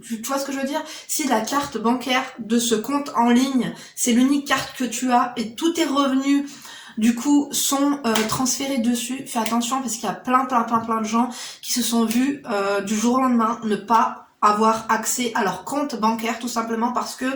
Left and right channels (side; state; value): both; identical; correlation 1.00